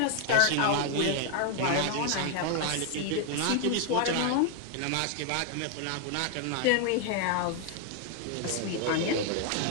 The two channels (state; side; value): different; both; correlation 0.00